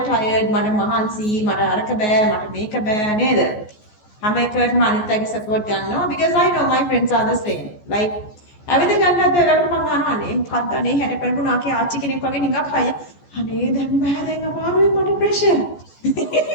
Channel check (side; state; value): right; late; 14 ms